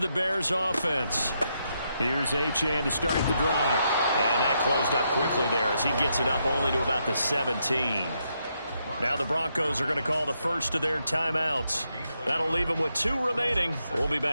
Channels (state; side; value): inverted; both; correlation -0.80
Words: Bears offense. Here's Achane to start the drive. And that closed up quickly there as he gets it up only to about the 17. Now the Broncos are going to call the first of their timeouts. That'll leave them with 2 remaining. We'll be